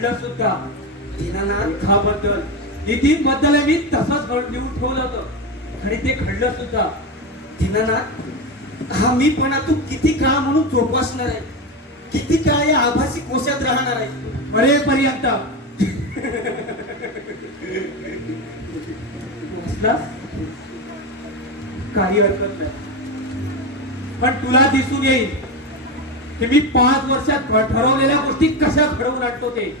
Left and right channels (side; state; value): both; normal; correlation 0.16